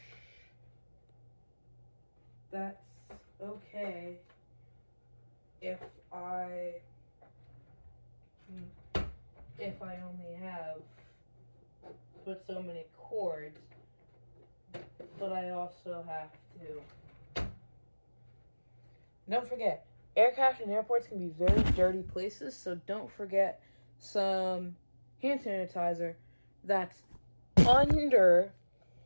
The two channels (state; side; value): inverted; both; correlation -1.00